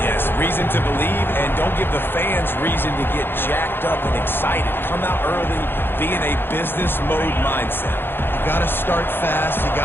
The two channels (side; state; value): right; late; 0.10 ms